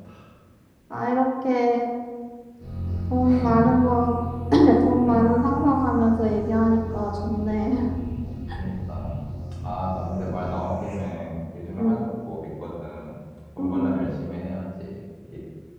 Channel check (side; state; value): both; identical; correlation 1.00